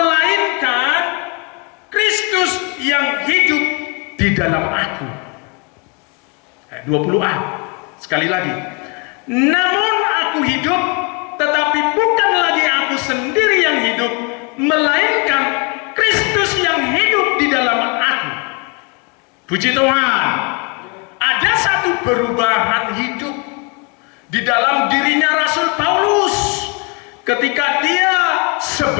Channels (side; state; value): right; quieter; 33.0 dB